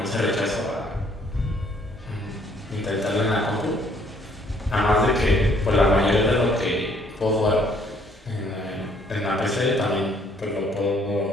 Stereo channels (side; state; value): both; normal; correlation 0.64